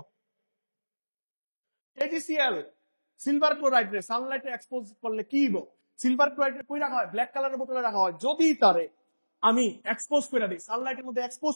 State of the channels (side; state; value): both; inverted; correlation -1.00